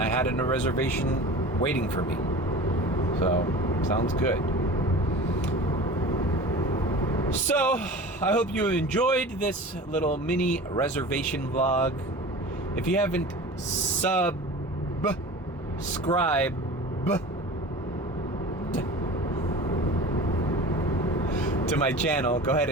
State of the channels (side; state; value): both; normal; correlation 0.37